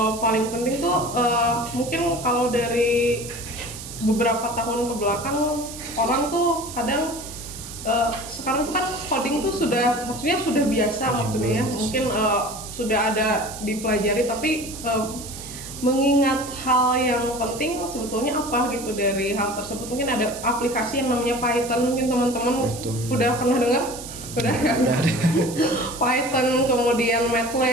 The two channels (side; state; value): right; noise; hiss, 12 dB below the sound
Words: paling penting tuh mungkin kalau dari beberapa tahun ke belakang orang tuh kadang sekarang tuh kan coding tuh maksudnya sudah biasa maksudnya ya, mungkin sudah ada dipelajari, tapi mengingat hal yang penting sebetulnya apa gitu dari hal tersebut. Mungkin ada aplikasi yang namanya Python, mungkin teman-teman udah pernah dengar? Udah kan? Python, kemudian